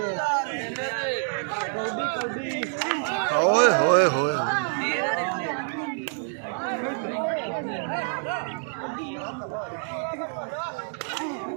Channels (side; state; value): left; silent; 60 dB below the other